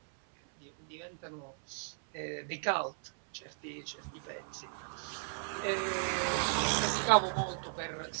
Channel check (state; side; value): silent; left; 54 dB below the other